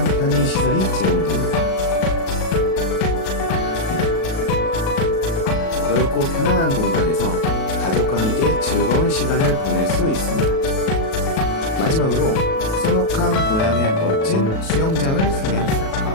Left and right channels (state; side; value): late; right; 37 ms